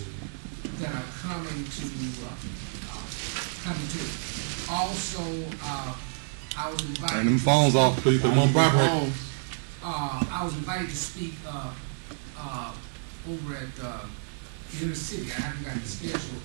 that are coming to it. Also, I was invited. And them phones off, please. Put them on vibrate. I was invited to speak over at inner city. I haven't got the schedule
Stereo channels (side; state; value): left; silent; digital silence